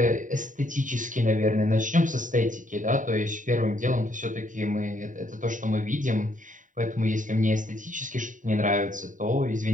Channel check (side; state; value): left; late; 0.37 ms